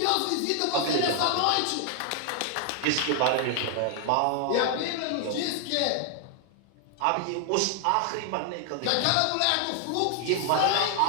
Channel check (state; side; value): different; both; correlation 0.00